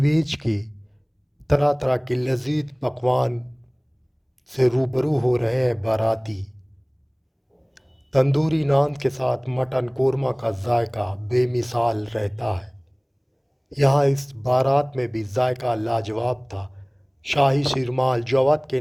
के तरह तरह के लजीज पकवान से रूबरू हो रहे हैं बाराती। तंदूरी नान के साथ मटन कोरमा का जायका बेमिसाल रहता है। यहाँ इस बारात में भी जायका लाजवाब था। शाही शिरमाल जवाद के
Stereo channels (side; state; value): both; identical; correlation 1.00